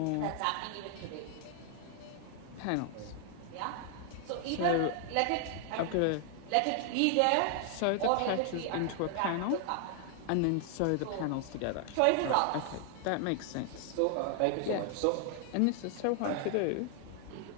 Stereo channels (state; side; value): different; both; correlation 0.00